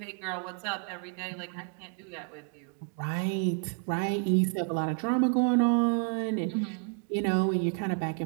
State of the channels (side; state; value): left; quieter; 38.7 dB